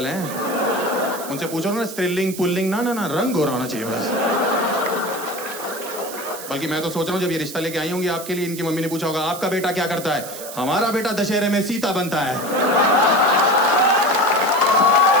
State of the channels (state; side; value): noise; right; hiss, 11 dB below the sound